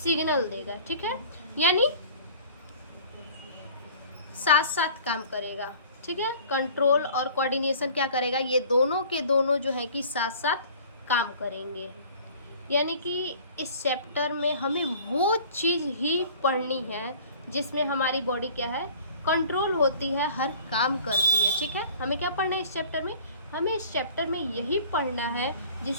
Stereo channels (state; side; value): inverted; both; correlation -0.48